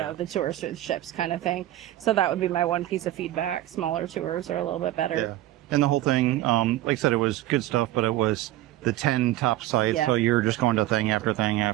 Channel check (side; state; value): left; quieter; 14.8 dB